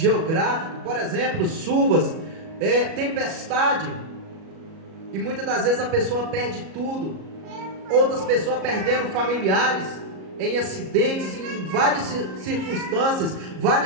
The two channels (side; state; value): left; late; 37 ms